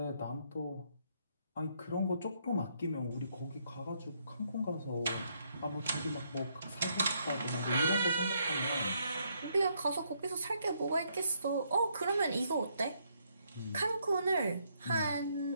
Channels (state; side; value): inverted; both; correlation -0.73